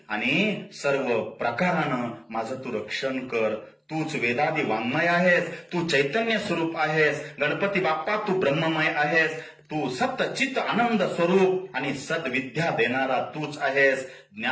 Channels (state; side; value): identical; both; correlation 1.00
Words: आणि सर्व प्रकारानं माझं तू रक्षण कर. तूच वेदादी वाङ्मय आहेस, तू चैतन्य स्वरूप आहेस गणपती बाप्पा. तू ब्रह्ममय आहेस. तू सत्चित आनंद स्वरूप आणि सद्विद्या देणारा तूच आहेस.